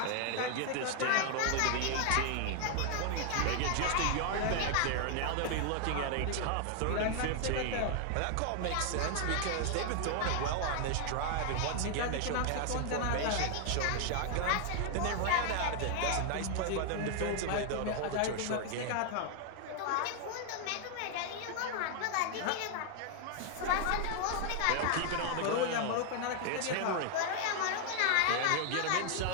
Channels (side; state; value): both; different; correlation 0.00